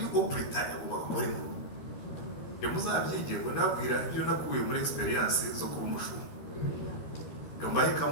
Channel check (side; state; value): right; late; 13 ms